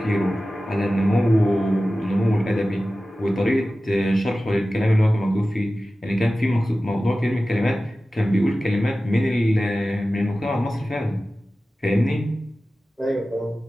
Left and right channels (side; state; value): both; normal; correlation 0.95